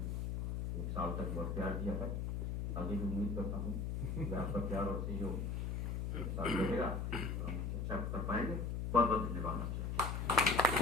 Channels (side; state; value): left; noise; hum, 1 dB below the sound